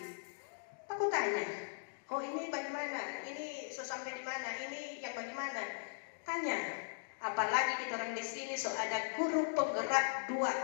Aku tanya, oh ini bagaimana, ini sampai di mana, ini yang bagaimana, tanya. Apalagi kita orang di sini ada guru penggerak 2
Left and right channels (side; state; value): right; silent; digital silence